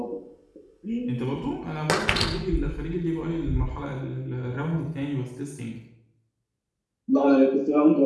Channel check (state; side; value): identical; both; correlation 1.00